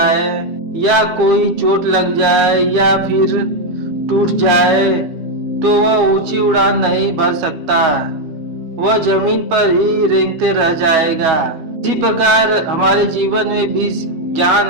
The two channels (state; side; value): late; left; 12 ms